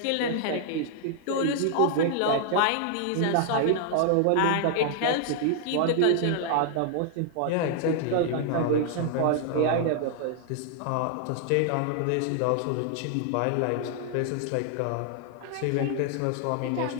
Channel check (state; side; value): different; both; correlation 0.00